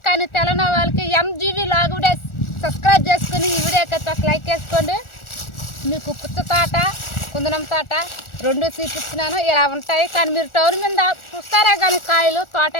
కానీ తెలంగాణ వాళ్ళకి ఎంజీవి లాగ్ కూడా సబ్స్క్రైబ్ చేసుకుని ఈ వీడియోకి అయితే ఒక లైక్ వేసుకోండి. మీకు పుచ్చ తోట, కుందనం తోట రెండు చూపించినాను ఇలా ఉంటాయి. కానీ మీరు టౌన్ మీద చూస్తారే కానీ కాయలు, తోట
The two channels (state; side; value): late; right; 1.4 ms